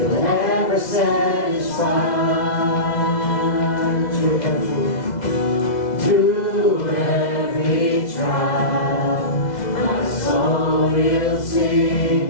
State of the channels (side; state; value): right; late; 2.0 ms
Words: ever will sing,